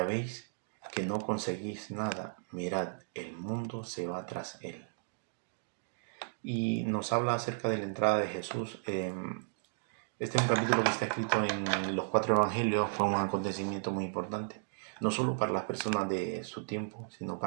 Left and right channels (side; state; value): left; silent; digital silence